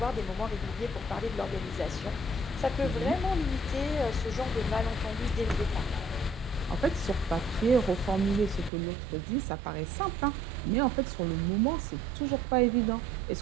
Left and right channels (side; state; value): left; drops out; at 8.7 s